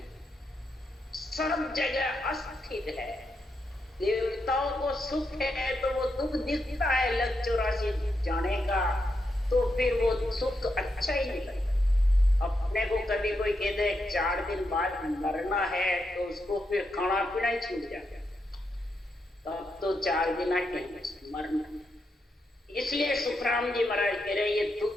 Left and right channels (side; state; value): both; normal; correlation 0.83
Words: सब जगह अस्थिर है। देवताओं को सुख है तो वो दुख दिखता है लग 84 जाने का, तो फिर वो सुख अच्छा ही नहीं लगता। अपने को कभी कोई कह दे 4 दिन बाद मरना है तो उसको फिर खाना पीना ही छूट जाता है, तब तो 4 दिन आके मरना। इसलिए सुखराम जी महाराज कह रहे, ये